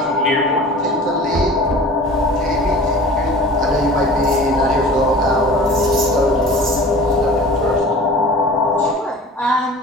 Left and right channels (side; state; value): both; normal; correlation 0.41